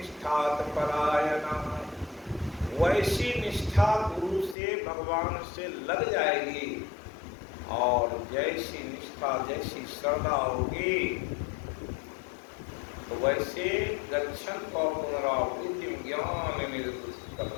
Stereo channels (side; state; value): right; drops out; at 4.5 s